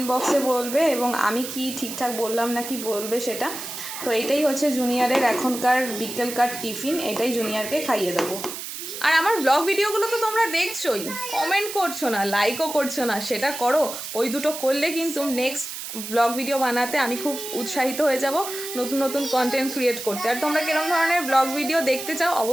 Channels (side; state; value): right; noise; hiss, 8 dB below the sound